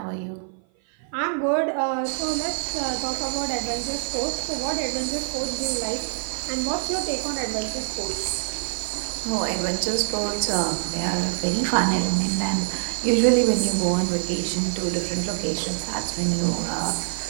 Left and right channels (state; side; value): silent; left; 55 dB below the other